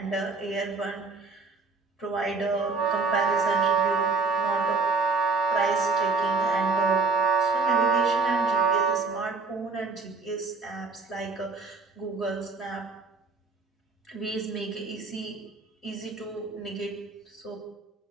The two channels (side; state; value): left; quieter; 4.2 dB